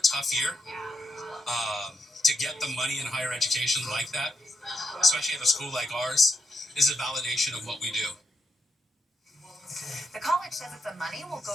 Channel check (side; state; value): both; normal; correlation 0.81